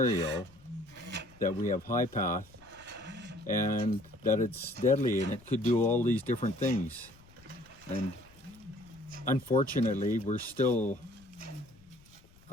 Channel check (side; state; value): left; noise; rumble, 25 dB below the sound